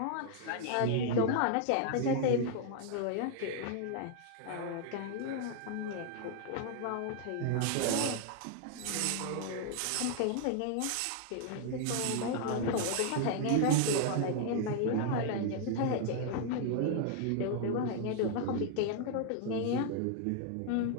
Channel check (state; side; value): different; both; correlation 0.00